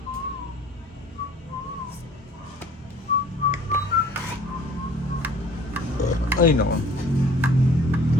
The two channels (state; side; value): normal; both; correlation 0.51